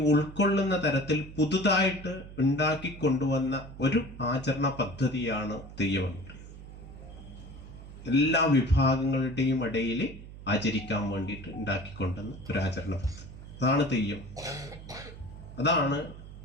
ഉൾക്കൊള്ളുന്ന തരത്തിൽ പുതുതായിട്ട് ഉണ്ടാക്കി കൊണ്ടുവന്ന ഒരു ആചരണ പദ്ധതിയാണ് തെയ്യം എന്ന് പറയുന്നത്. എല്ലാ വിഭാഗങ്ങളുടെയും ഇടയിൽ ആചരിക്കാൻ വേണ്ടിയിട്ട് ഉണ്ടാക്കിക്കൊണ്ടുവന്ന ഒരു ആചരണ പദ്ധതി, അതാണ് തെയ്യം. അതാണ്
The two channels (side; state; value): right; noise; hum, 14 dB below the sound